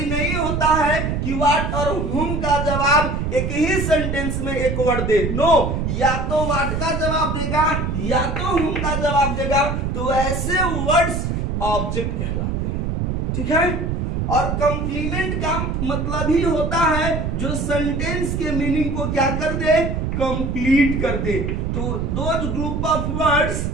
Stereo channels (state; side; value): noise; right; rumble, 1 dB below the sound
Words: नहीं होता है कि व्हाट और हुम का जवाब एक ही सेंटेंस में एक वर्ड दे। नो, या तो व्हाट का जवाब देगा या तो हुम का जवाब देगा। तो ऐसे वर्ड्स ऑब्जेक्ट कहलाते हैं। ठीक है, और कंप्लीमेंट का मतलब ही होता है जो सेंटेंस के मीनिंग को क्या कर दे, कंप्लीट कर दे। तो those group of words